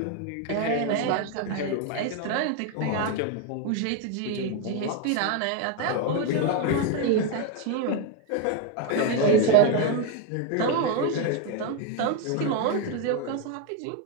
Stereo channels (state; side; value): different; both; correlation 0.01